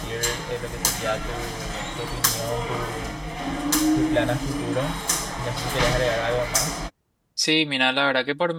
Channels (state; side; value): identical; both; correlation 1.00